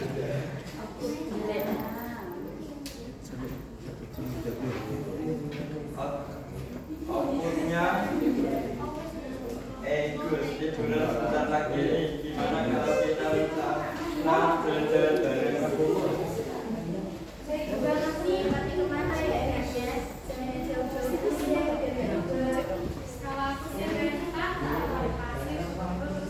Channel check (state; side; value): identical; both; correlation 1.00